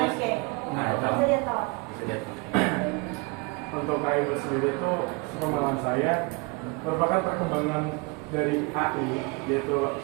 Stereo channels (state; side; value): quieter; left; 28.1 dB